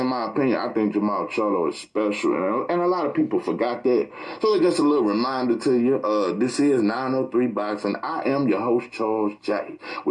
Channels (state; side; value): identical; both; correlation 1.00